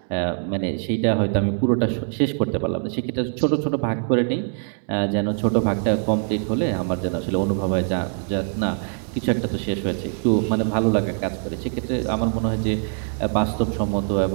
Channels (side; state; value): left; silent; 58 dB below the other